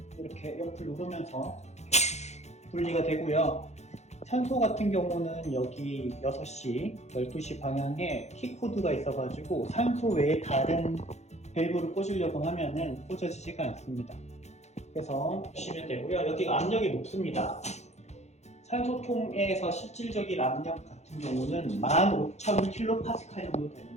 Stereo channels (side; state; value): right; late; 0.32 ms